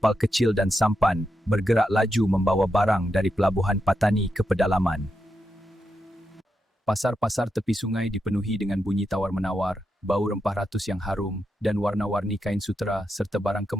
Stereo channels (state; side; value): normal; both; correlation 0.85